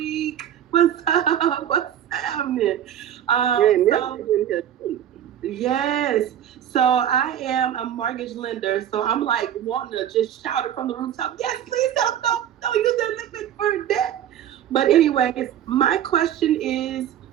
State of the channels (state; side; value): quieter; left; 10.4 dB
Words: What's up? What's happening? Yes, so I am a mortgage lender, so I'm like wanting to just shout it from the rooftop. Yes, please don't use their limit for debt. But anyways, my question is